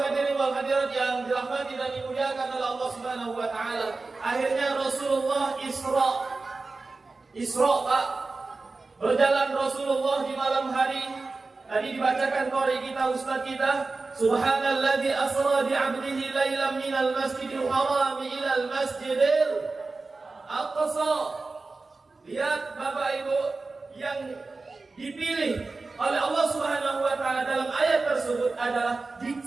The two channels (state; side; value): quieter; left; 3.7 dB